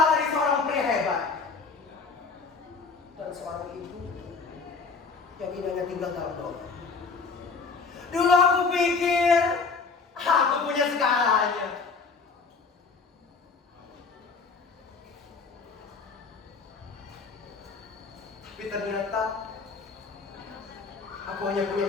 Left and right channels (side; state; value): right; quieter; 4.6 dB